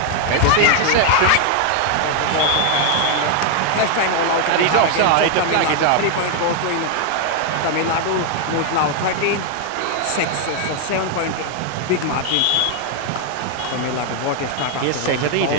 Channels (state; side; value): different; both; correlation 0.00